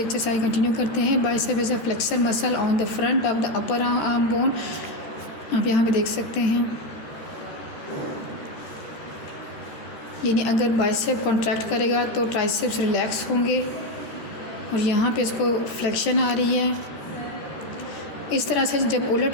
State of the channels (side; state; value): right; late; 14 ms